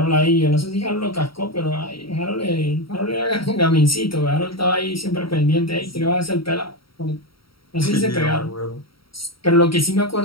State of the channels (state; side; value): late; right; 0.75 ms